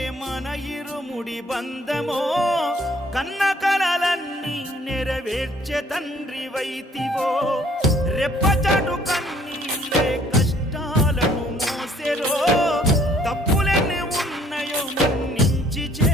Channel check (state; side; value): normal; both; correlation 0.60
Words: మన ఇరుముడి బంధమో కన్న కలలన్నీ నెరవేర్చే తండ్రి వైతివో రెప్పచాటు కన్నీళ్ళే కష్టాలను మోసెరో తప్పులెన్ని ఉన్నాయో మన్నించి